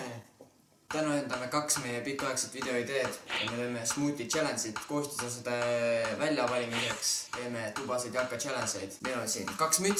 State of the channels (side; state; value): both; identical; correlation 1.00